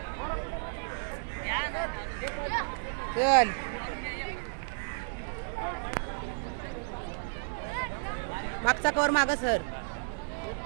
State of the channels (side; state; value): left; silent; 56 dB below the other